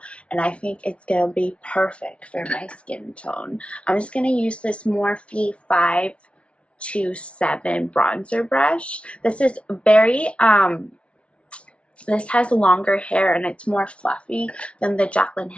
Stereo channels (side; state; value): right; late; 0.061 ms